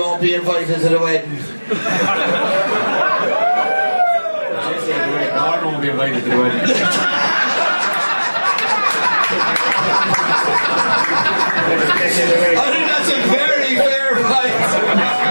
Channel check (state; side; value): inverted; both; correlation -1.00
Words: be invited to the wedding. Gordon won't be invited to the wedding. I think that's a very fair fight.